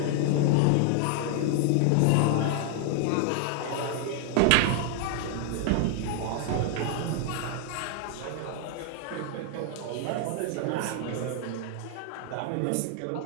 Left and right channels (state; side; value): different; both; correlation 0.00